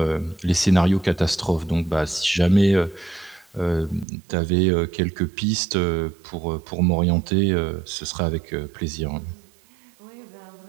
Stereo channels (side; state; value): left; drops out; at 4.0 s